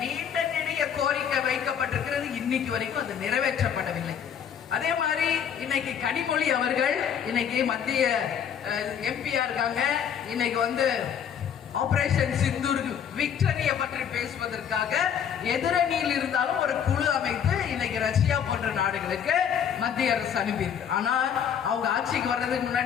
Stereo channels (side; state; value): right; quieter; 8.3 dB